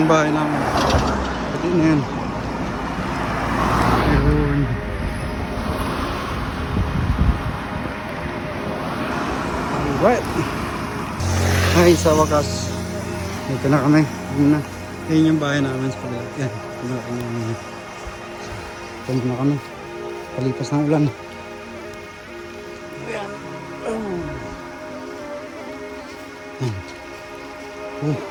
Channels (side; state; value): both; identical; correlation 1.00